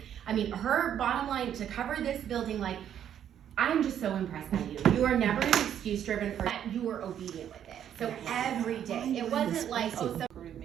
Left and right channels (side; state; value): left; quieter; 9.7 dB